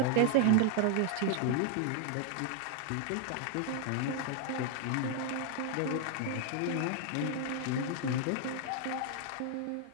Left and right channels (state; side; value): different; both; correlation 0.00